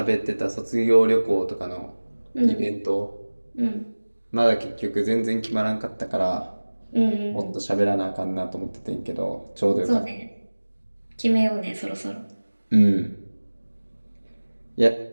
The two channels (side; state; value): both; inverted; correlation -1.00